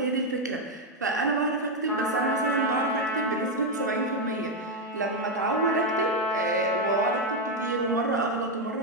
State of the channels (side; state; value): both; normal; correlation 0.04